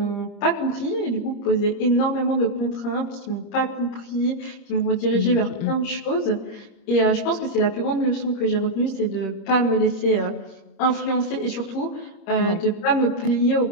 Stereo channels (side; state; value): right; late; 30 ms